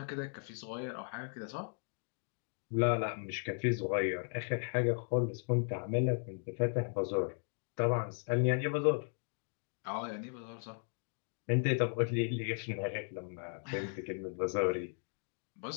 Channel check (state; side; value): silent; right; 53 dB below the other